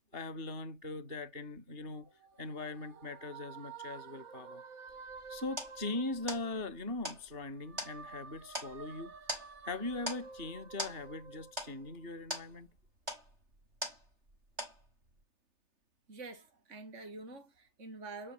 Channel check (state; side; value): late; left; 3.3 ms